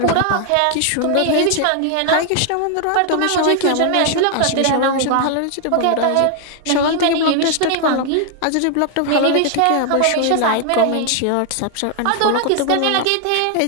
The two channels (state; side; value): different; both; correlation 0.00